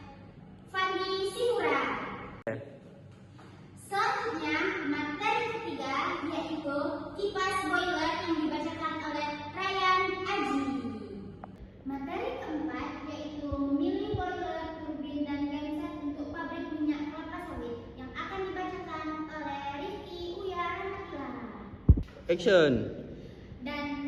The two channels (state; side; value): identical; both; correlation 1.00